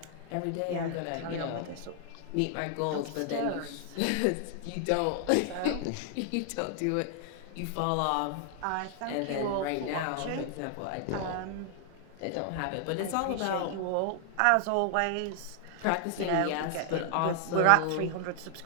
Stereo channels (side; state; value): both; different; correlation 0.00